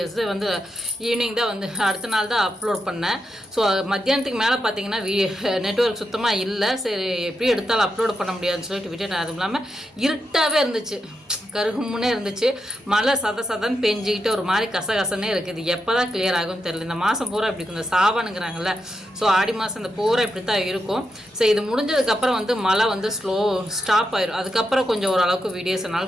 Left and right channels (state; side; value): normal; both; correlation 0.84